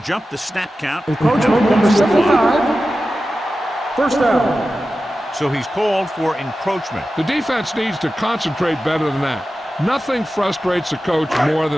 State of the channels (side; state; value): both; normal; correlation 0.93